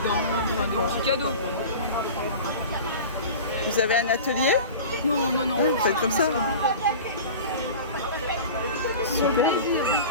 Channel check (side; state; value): both; inverted; correlation -0.35